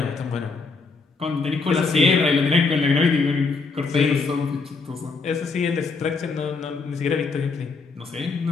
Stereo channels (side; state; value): right; quieter; 4.3 dB